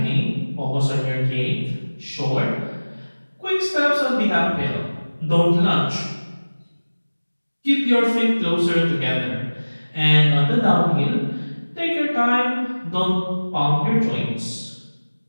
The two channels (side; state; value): both; inverted; correlation -1.00